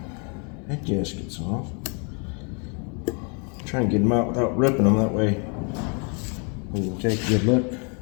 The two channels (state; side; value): quieter; right; 36.9 dB